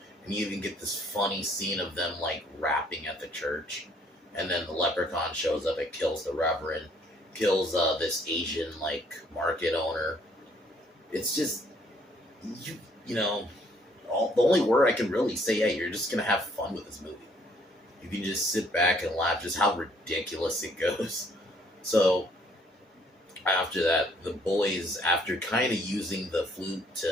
and you even get this funny scene of them like rapping at the church. And then the Leprechaun shows up and kills the reverend, kills this Asian like market owner. It's just you know, the only word I can really say, yeah, you're just gonna have fun with this movie. You can just sit back and laugh just how ridiculous it goes. So after that, the boys, after kind of using the flute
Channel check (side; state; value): both; normal; correlation 0.64